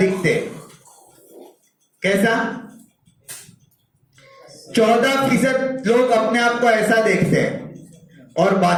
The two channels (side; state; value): both; identical; correlation 1.00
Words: कैसा? 14% लोग अपने आप को ऐसा देखते हैं और